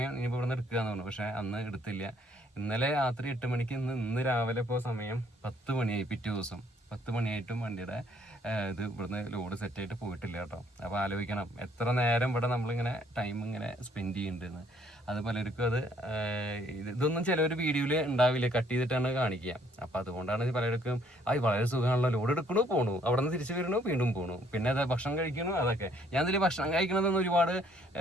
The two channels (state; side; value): normal; both; correlation 0.65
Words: ഇനിയിപ്പോൾ ഇവിടെ നിന്ന് എടുക്കുകയെന്ന് പറഞ്ഞു. പക്ഷേ അന്ന് എടുത്തില്ല. ഇന്നലെ രാത്രി 8 മണിക്ക്, ഇന്ന് രാവിലെ ഇപ്പോൾ സമയം 10 മണിയായി. പിറ്റേ ദിവസം 10 മണിയായിട്ടും വണ്ടിയുടെ ഇത് ഇവിടുന്ന് ലോഡ് സെറ്റായിട്ട് പോയിട്ടില്ല കേട്ടോ. അപ്പോൾ ആലോചിക്കണം എത്ര നേരം ഇവിടെ നമ്മളിങ്ങനെ ടൈം ഇങ്ങനെ സ്പെൻഡ് ചെയ്യുന്നുണ്ടെന്ന്. അത് പലർക്കും അത് ഇതൊന്നും ചിലവർ വീഡിയോയിൽ ഉണ്ടാവില്ല, കട്ട് ചെയ്തിട്ടാണ് കാണിക്കുക. അപ്പോൾ അതുകൊണ്ടാണ് പലർക്കും വളരെ സുഖമാണല്ലോ, ലോഡ് എടുക്കണു പോണു, അവിടെ നിന്ന് തിരിച്ചു വരണു, വീണ്ടും പോണു, പിന്നെ അത് ഭക്ഷണം കഴിക്കണു. അതൊക്കെ ഞാൻ ഇതിൽ ഭക്ഷണം കഴിക്കണതെന്ന് ഒരുപാട്